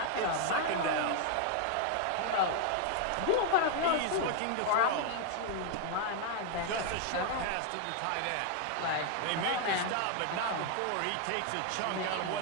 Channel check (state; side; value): different; both; correlation 0.00